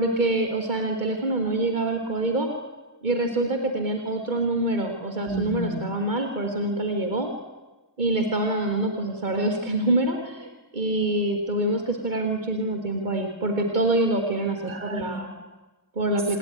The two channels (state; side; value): late; left; 2.2 ms